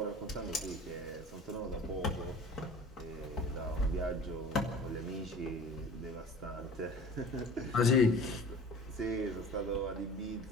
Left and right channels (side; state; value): both; normal; correlation 0.42